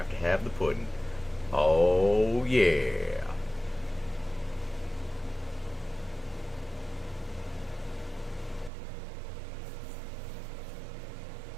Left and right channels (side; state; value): left; drops out; at 8.7 s